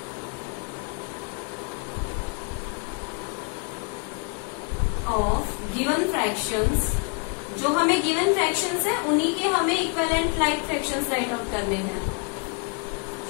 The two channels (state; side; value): quieter; right; 36.5 dB